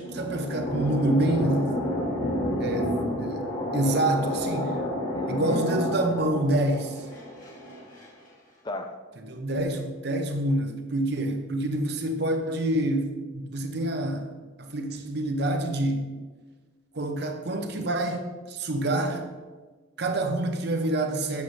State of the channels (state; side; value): normal; both; correlation 0.42